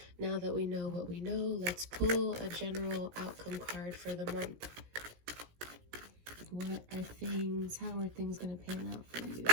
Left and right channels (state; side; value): late; left; 17 ms